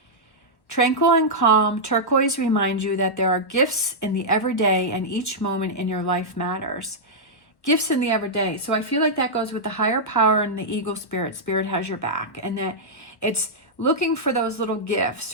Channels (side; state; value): right; late; 1.1 ms